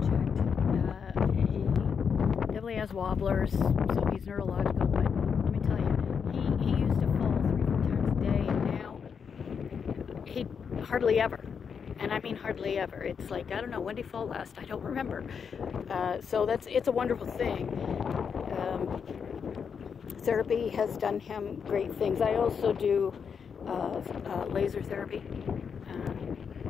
checked. He definitely has wobblers, so he's neurological, but let me tell you, he used to fall 3 or 4 times a day, and now he hardly ever. And I mean hardly ever. It's like, I don't know, when did he fall last? I don't remember. So it's a wonderful thing. Therapy has done him great things. I also do laser therapy.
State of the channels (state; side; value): quieter; right; 6.6 dB